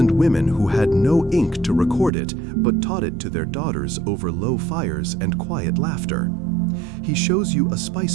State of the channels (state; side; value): drops out; left; at 2.1 s